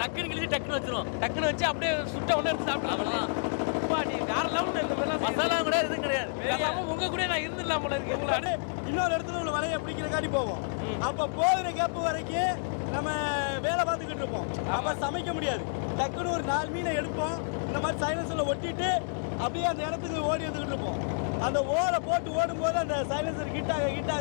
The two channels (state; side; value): silent; right; digital silence